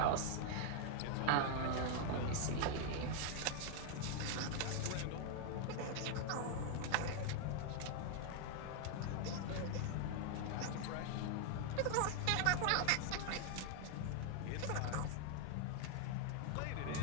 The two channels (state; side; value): different; both; correlation 0.00